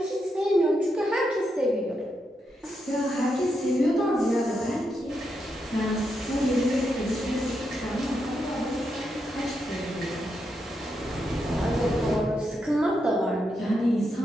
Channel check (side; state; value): both; normal; correlation 0.83